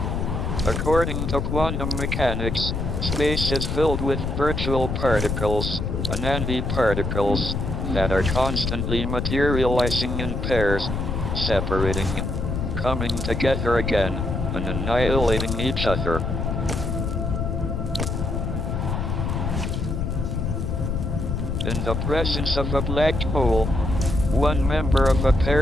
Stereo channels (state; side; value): noise; left; rumble, 2 dB below the sound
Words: According to quantum mechanics, space is filled with virtual particles, antiparticles, that are constantly materializing in pairs, separating, coming together again, and annihilating each other. In the presence of a black hole, one member of a